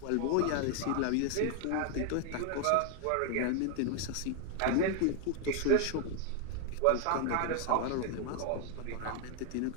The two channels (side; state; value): both; different; correlation 0.00